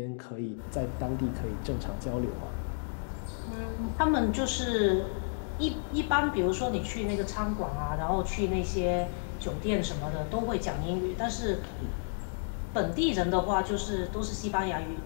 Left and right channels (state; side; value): silent; right; digital silence